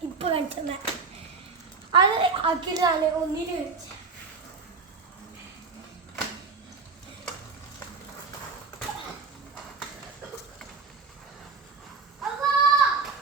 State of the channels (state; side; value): quieter; left; 4.7 dB